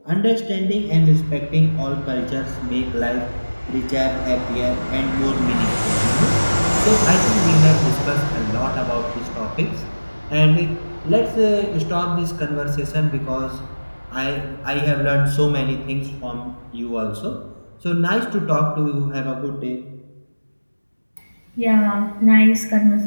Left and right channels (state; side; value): inverted; both; correlation -1.00